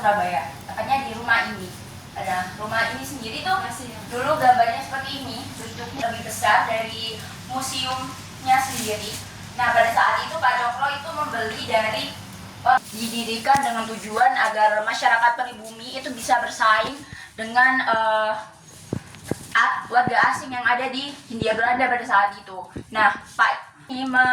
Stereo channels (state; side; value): identical; both; correlation 1.00